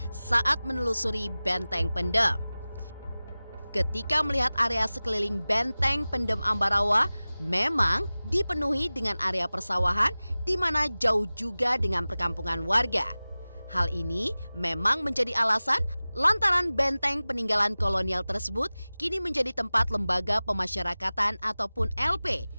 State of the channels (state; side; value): inverted; both; correlation -0.98